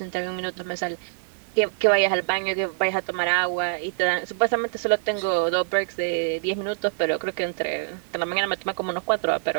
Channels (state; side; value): silent; left; 56 dB below the other